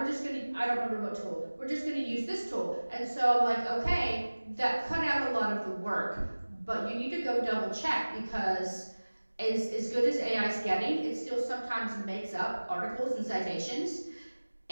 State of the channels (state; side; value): inverted; both; correlation -1.00